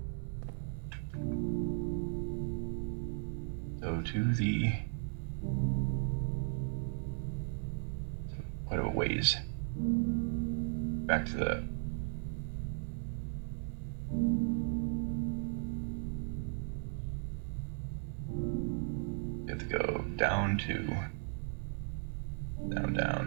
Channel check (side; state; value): left; silent; 53 dB below the other